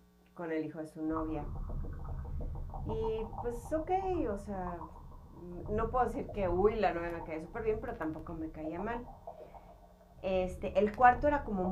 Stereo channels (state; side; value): identical; both; correlation 1.00